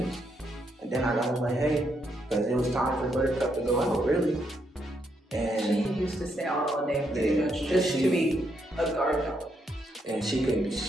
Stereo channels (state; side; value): normal; both; correlation 0.77